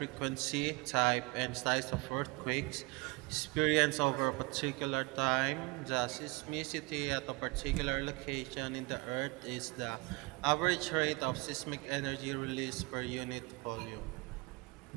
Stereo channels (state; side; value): quieter; left; 26.6 dB